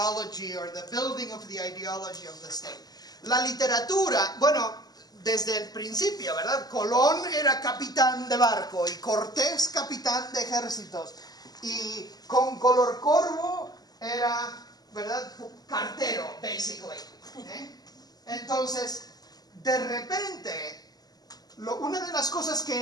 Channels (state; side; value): late; right; 0.19 ms